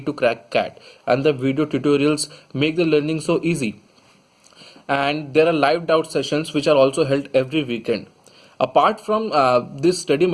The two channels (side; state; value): both; identical; correlation 1.00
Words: to crack CAT, and the video tutorials make the learning so easy. And there are live doubt sessions which are also held every weekend. Apart from these study